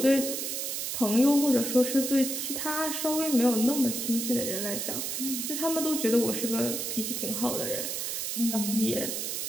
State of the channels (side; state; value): right; noise; hiss, 3 dB below the sound